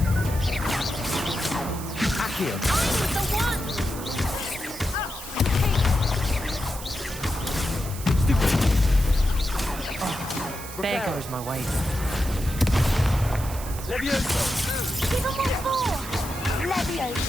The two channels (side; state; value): right; noise; hiss, 12 dB below the sound